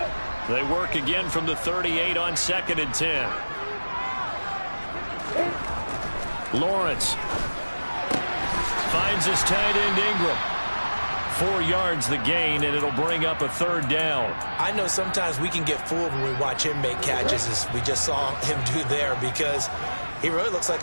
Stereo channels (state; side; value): inverted; both; correlation -1.00